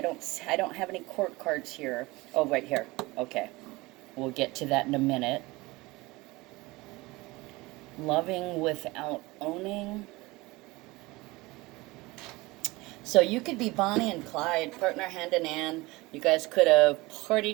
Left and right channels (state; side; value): quieter; left; 22.0 dB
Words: have any court cards here. Oh, right here. Okay. We'll get to that in a minute. Loving without owning. So you could be Bonnie and Clyde, partner hand in hand. You guys could have